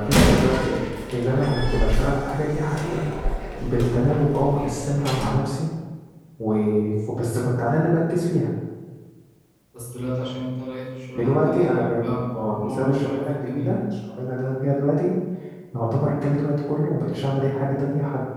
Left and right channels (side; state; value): both; identical; correlation 1.00